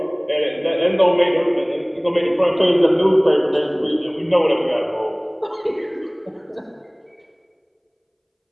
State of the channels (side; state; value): both; identical; correlation 1.00